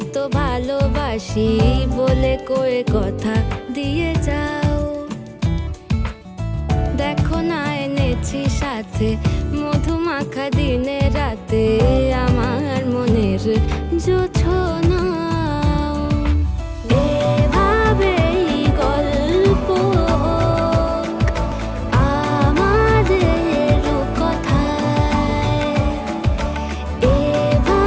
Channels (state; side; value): identical; both; correlation 1.00